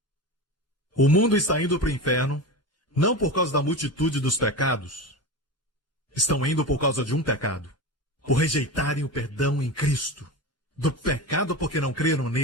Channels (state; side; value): normal; both; correlation 0.25